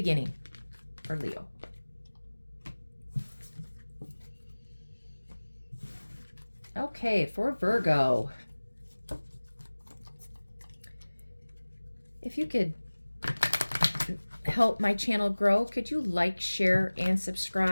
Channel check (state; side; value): inverted; both; correlation -1.00